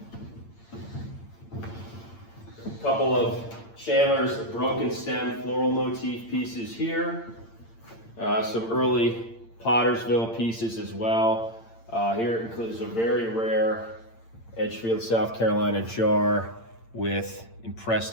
A couple of Chandler's broken stem floral motif pieces here. Some early Pottersville pieces as well. Here it includes a very rare Edgefield, South Carolina jar with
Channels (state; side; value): late; right; 8.8 ms